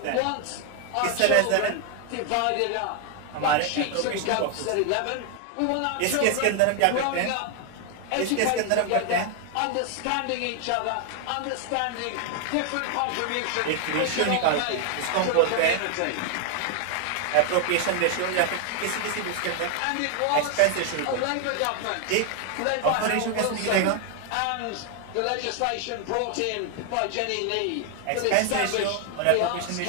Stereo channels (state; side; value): different; both; correlation 0.01